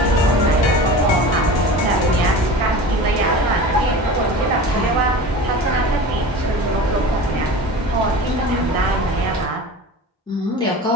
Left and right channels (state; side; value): normal; both; correlation 0.34